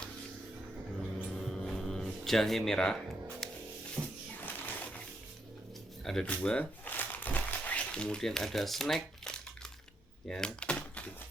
Jahe merah. Ada 2. Kemudian ada snack ya,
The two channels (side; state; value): both; normal; correlation 0.78